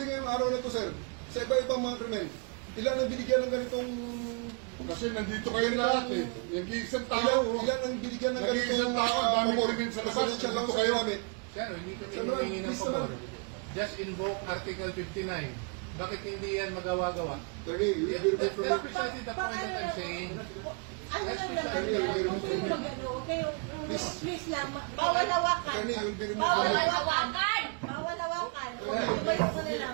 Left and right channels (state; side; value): quieter; left; 35.4 dB